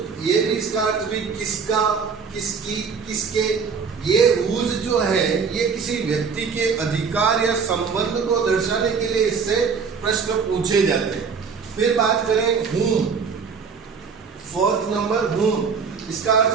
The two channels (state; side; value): quieter; left; 5.7 dB